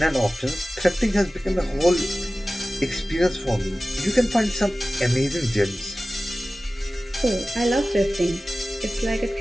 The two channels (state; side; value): normal; both; correlation 0.96